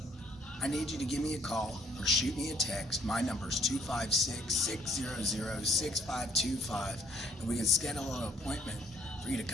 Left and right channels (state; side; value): normal; both; correlation 0.61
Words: I need you to give me a call or shoot me a text. My number is 256-600-6525, and we can schedule an appointment for you to